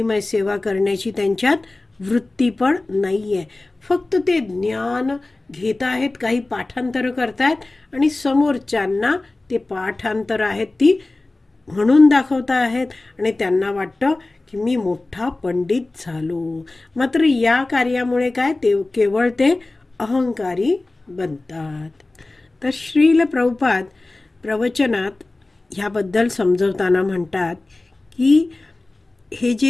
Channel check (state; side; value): quieter; right; 3.0 dB